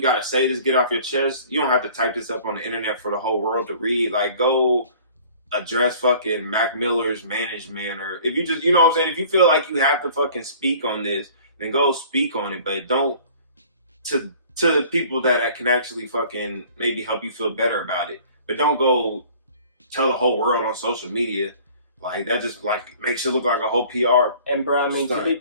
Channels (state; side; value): inverted; both; correlation -0.50